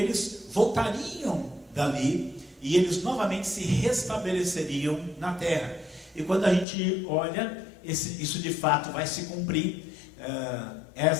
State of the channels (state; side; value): drops out; right; at 6.7 s